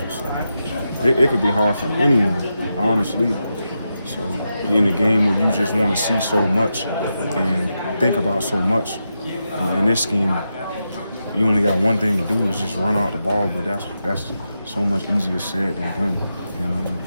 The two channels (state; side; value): inverted; both; correlation -0.87